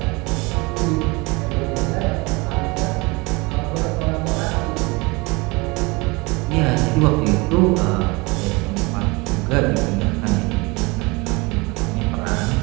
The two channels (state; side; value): quieter; left; 25.4 dB